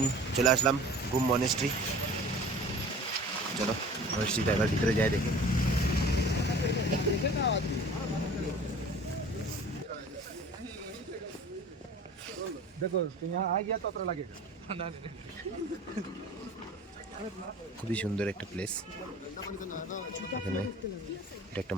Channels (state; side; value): normal; both; correlation 0.43